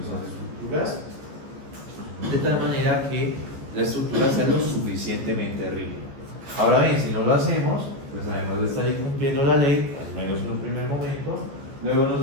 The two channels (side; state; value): left; late; 14 ms